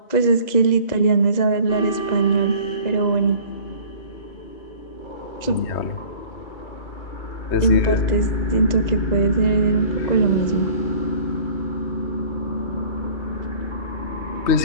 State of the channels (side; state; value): right; late; 2.0 ms